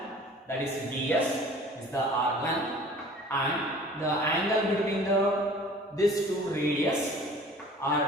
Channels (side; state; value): both; normal; correlation 0.47